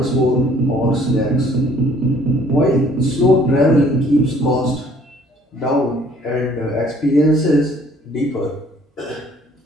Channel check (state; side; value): normal; both; correlation 0.58